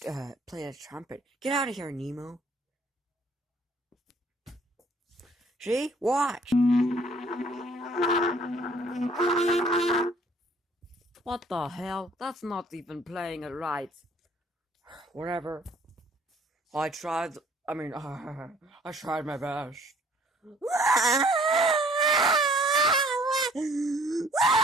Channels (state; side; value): normal; both; correlation 0.57